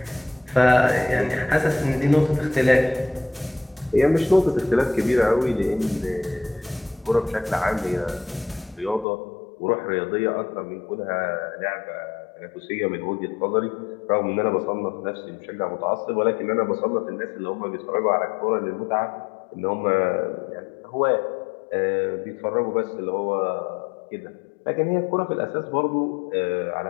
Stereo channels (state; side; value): drops out; right; at 9.1 s